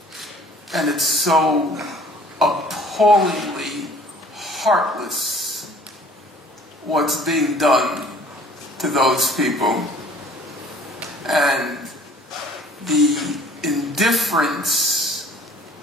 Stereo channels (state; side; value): normal; both; correlation 0.52